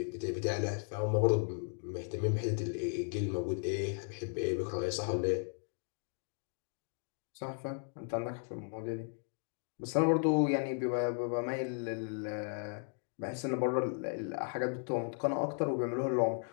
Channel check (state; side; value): silent; right; 54 dB below the other